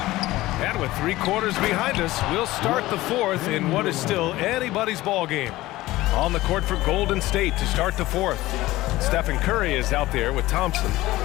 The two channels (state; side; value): quieter; right; 17.5 dB